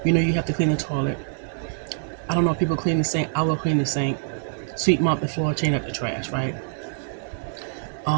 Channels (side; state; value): left; silent; digital silence